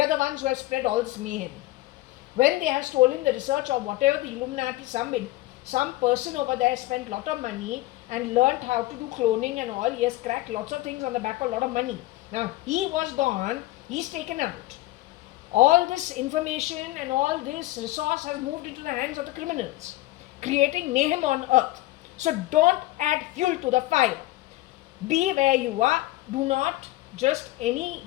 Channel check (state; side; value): quieter; right; 17.9 dB